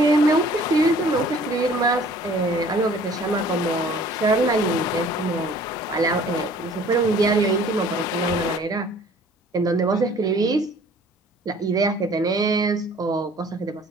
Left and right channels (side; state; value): both; normal; correlation 0.53